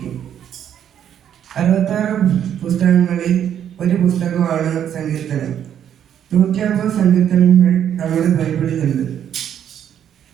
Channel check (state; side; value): quieter; left; 9.6 dB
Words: 66 പുസ്തകങ്ങളിൽ ഒരു പുസ്തകമാണ് സങ്കീർത്തനം. 150 സങ്കീർത്തനങ്ങൾ നമ്മുടെ ബൈബിളിലുണ്ട്.